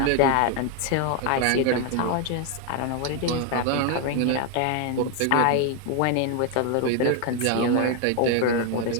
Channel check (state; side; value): different; both; correlation 0.01